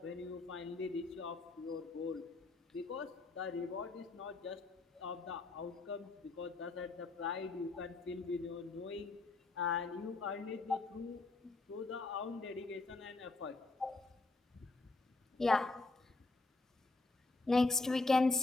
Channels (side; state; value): right; quieter; 3.5 dB